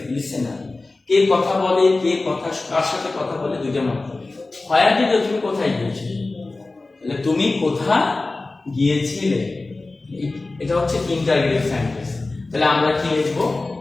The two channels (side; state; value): right; quieter; 3.3 dB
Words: listener. কে কথা বলে, কে কথা কার সাথে কথা বলে, দুইটা মাত্র। হোয়ার ডিড ইউ, তুমি কোথায় গিয়েছিলে, তাহলে তুমি কোথায় গিয়েছিলে, এটা হচ্ছে ইন্টারগেটিভ সেন্টেন্স। তাহলে আমরা কি লিখবো?